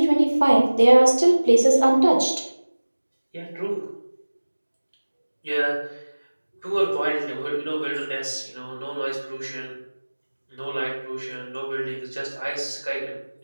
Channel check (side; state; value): both; inverted; correlation -1.00